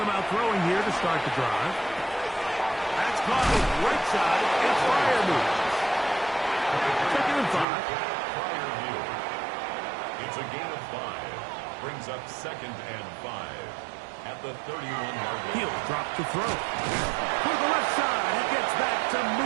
out throwing here to start the drive. That's caught the right side. It's Freiermuth. 2nd and 5. It's a gain of 5. Brings up 2nd and 5 at the 31-yard line. He'll drop to throw. To the left side. He gets back to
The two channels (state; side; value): drops out; left; at 7.7 s